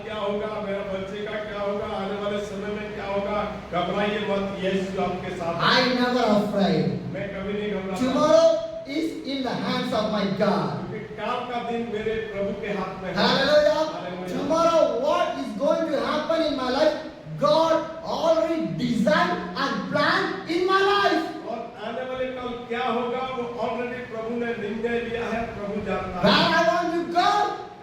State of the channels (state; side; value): identical; both; correlation 1.00